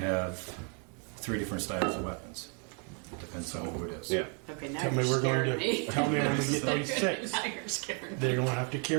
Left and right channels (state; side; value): quieter; left; 38.8 dB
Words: 3 different styles of weapons. Depends on who it is. Yeah. Okay, now Tell me you're we're going scaring me. to. Tell me when we get these 6. Now you're scaring me. They're going to have to